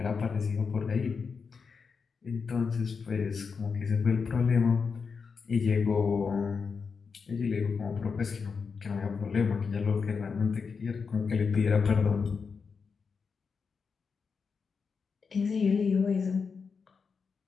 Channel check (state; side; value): quieter; right; 5.4 dB